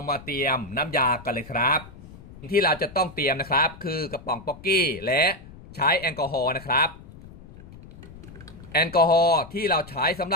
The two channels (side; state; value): left; noise; rumble, 18 dB below the sound